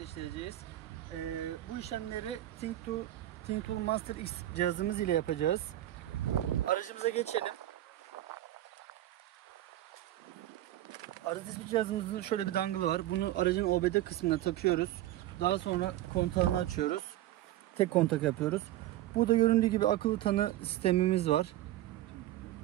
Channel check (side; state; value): left; quieter; 14.2 dB